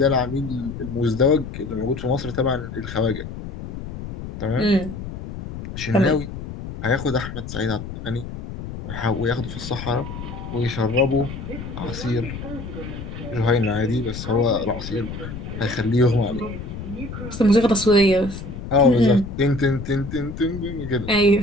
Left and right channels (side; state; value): left; noise; rumble, 9 dB below the sound